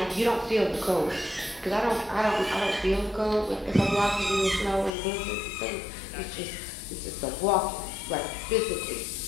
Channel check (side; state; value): right; drops out; at 4.9 s